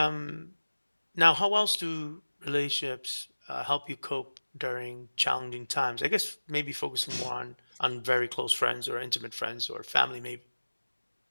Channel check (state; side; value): inverted; both; correlation -1.00